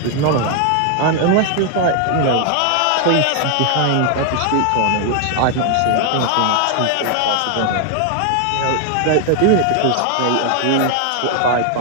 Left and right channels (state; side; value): different; both; correlation 0.00